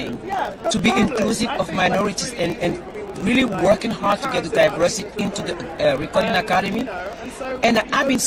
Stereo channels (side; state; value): both; identical; correlation 1.00